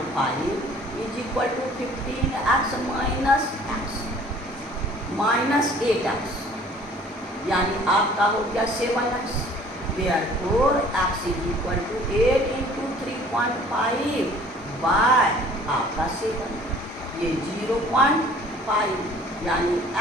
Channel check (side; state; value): both; normal; correlation 0.52